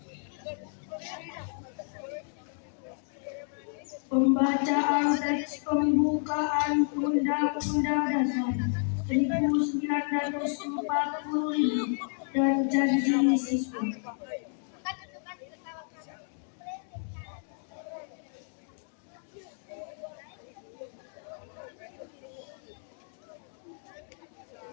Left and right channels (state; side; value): silent; right; 57 dB below the other